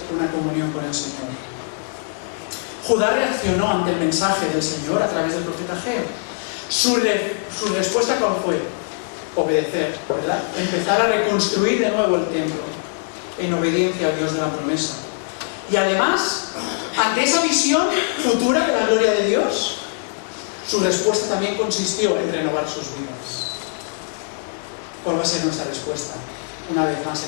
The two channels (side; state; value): right; silent; digital silence